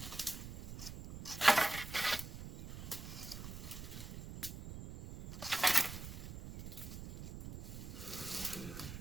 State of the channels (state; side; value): noise; right; rumble, 9 dB below the sound